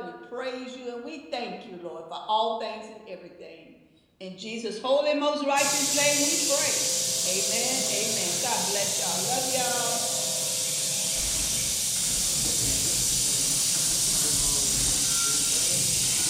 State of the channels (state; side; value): identical; both; correlation 1.00